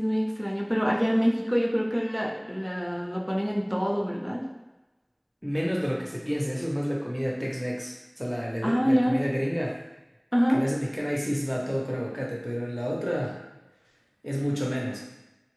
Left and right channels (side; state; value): both; identical; correlation 1.00